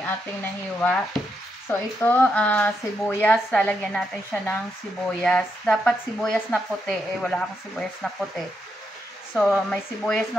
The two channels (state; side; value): normal; both; correlation 0.81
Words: ating nahiwa. So, ito, sibuyas. Lalagyan natin siya ng sibuyas. Dapat sibuyas na puti. Wala akong sibuyas na puti. So, may sibuyas